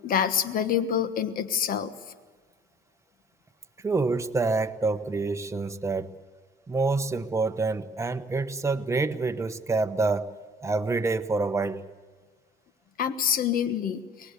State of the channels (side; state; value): both; normal; correlation 0.52